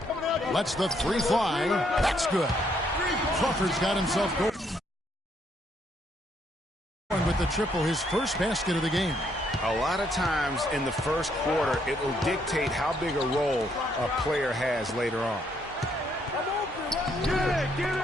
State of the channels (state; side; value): normal; both; correlation 0.71